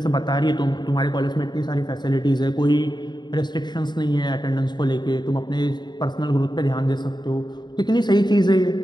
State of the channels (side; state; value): right; late; 0.21 ms